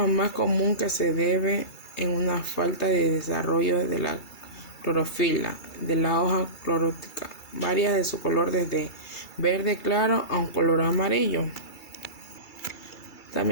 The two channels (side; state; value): right; late; 2.3 ms